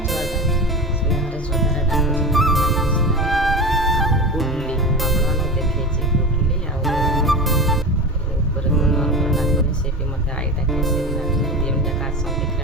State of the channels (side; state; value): both; normal; correlation 0.27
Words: ଛୁଆଟା ସ୍ନେହରେ ଶ୍ରଦ୍ଧାରେ ଡାକୁଛି। ଆଉ ଗୁଡ଼ଲି ଆପଣମାନଙ୍କୁ ଦେଖେଇଛି, ଗୁଡ଼ଲି ଆଉ ଉପରେ ନର୍ମର ଡାକୁନି, ସେ ବି ମୋତେ ଆଈ ଡାକେ, ସେ ବି ଡାକେ। ଦୁଇ ଯାକ ଆସନ୍ତି